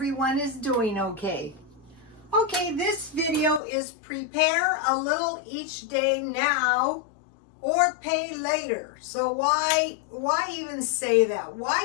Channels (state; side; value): drops out; right; at 3.6 s